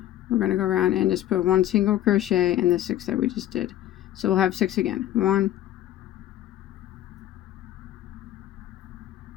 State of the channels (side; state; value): right; quieter; 13.1 dB